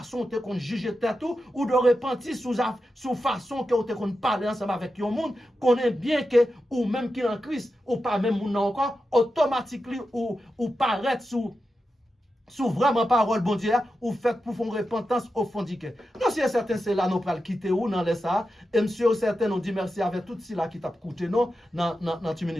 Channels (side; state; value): both; normal; correlation 0.90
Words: qu'on juge tout, ou de repentir sur façon qu'on parle ensemble avec le monde, qu'on est bien que, ou même qui est en Christ, ou pas même moun encore, automatiquement, ou paraître sous vraiment parole bon Dieu ou fait pour faire repentance au fond du cœur. Non, si certain c'est là nous pral quitter ou dans les ça et monsieur certain nous dit merci avec tout cela qui t'a coûté non dans 10